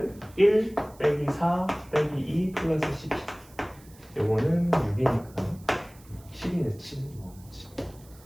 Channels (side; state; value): right; noise; hiss, 25 dB below the sound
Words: 1 빼기 4 빼기 2 플러스 12 요거는 6이니까 7이네 7